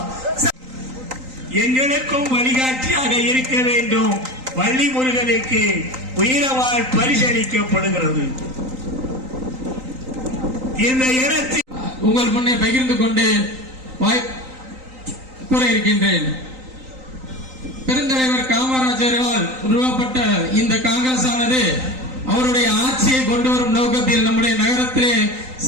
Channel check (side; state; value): left; late; 3.9 ms